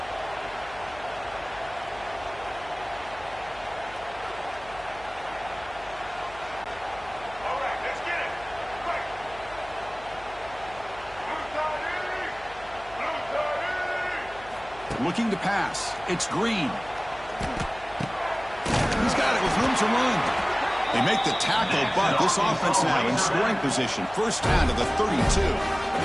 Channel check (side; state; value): left; noise; hum, 20 dB below the sound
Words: Looking to pass. It's Green. He's got it with room to run. They make the tackle, but this offense now in scoring position. First down to the 32.